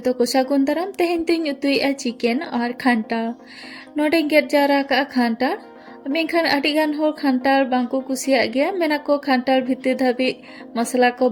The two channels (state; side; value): identical; both; correlation 1.00